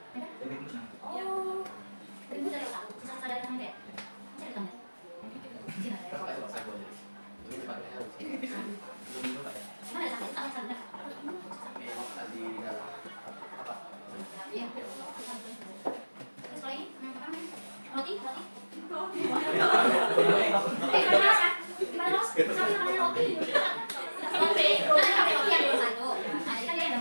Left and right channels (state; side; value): inverted; both; correlation -1.00